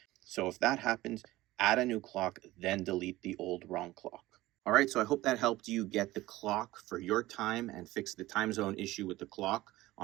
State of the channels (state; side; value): quieter; left; 17.5 dB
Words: So if that happens, add a new clock, then delete the old wrong clock. All right, so I hope that helped you get the clock for your time and fix the time zone issue with the clock